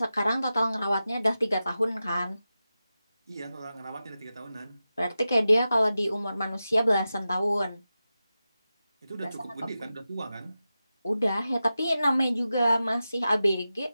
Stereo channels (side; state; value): both; inverted; correlation -0.93